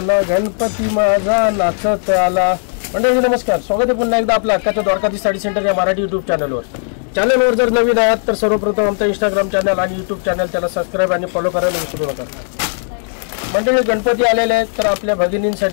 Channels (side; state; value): right; silent; digital silence